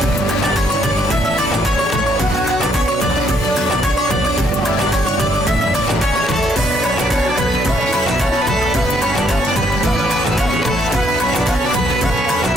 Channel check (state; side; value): normal; both; correlation 0.70